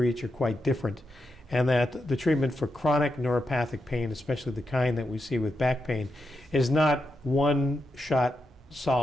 each are quite different, and that the treatment for chronic neuropathic pain, especially the kind that we see with back pain, is not one shot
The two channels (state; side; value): normal; both; correlation 0.86